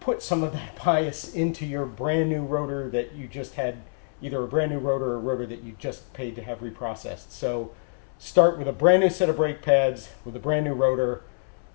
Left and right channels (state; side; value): silent; right; 61 dB below the other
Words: some of that bias into your brand new rotor that you just had, either a brand new rotor or a rotor that you just paid to have reprocessed. So start with a brand new set of brake pads with a brand new rotor,